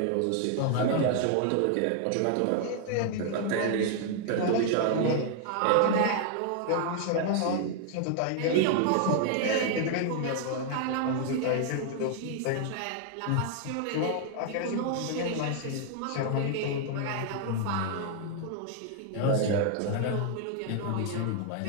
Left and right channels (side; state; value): both; different; correlation 0.00